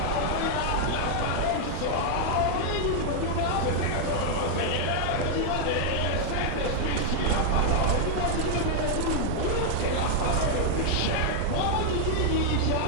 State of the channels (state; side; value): different; both; correlation 0.00